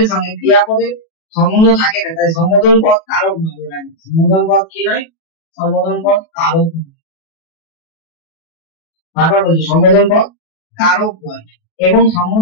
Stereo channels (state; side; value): late; right; 37 ms